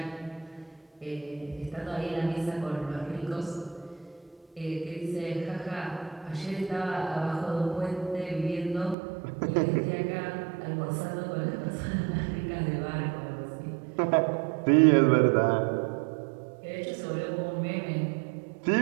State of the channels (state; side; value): drops out; left; at 9.0 s